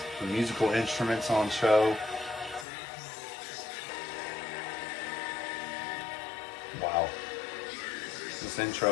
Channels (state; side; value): drops out; right; at 2.7 s